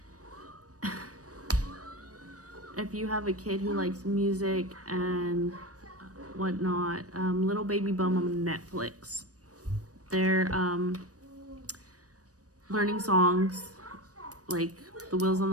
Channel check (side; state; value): left; late; 0.66 ms